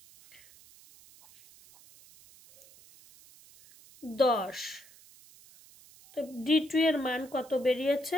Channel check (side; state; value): right; noise; hiss, 24 dB below the sound